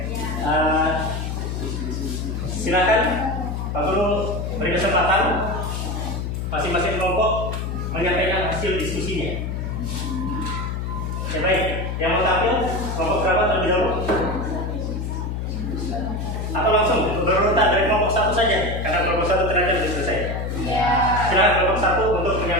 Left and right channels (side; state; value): left; noise; hum, 3 dB below the sound